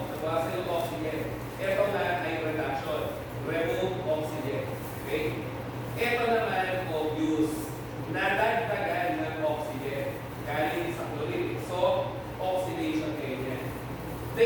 nabawasan yung oxygen. Ito na ay reduction. Remove oxygen. Okay? Ito naman, obvious. Nadagdagan ng oxygen. Galing sa chlorine. So, oxidation kayo yan.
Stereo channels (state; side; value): identical; both; correlation 1.00